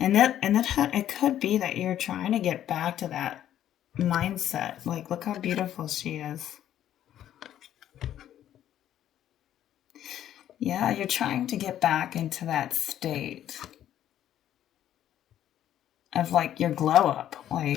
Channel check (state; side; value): quieter; right; 11.4 dB